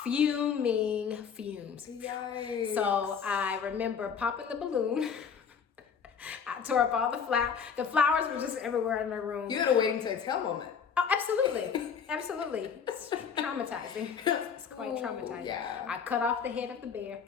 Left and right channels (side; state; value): right; quieter; 6.7 dB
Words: fumes. Yikes. So I remember popping the balloon. I tore up all the flowers. The flowers were just everywhere in the room. You had a waiting to exhale moment. Oh, absolutely. It's traumatizing. It's quite traumatizing. Yeah. I cut off the head of the bear.